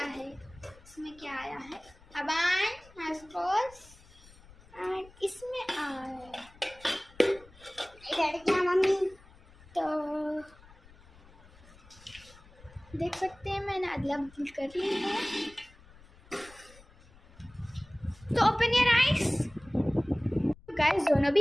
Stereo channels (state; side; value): noise; left; rumble, 24 dB below the sound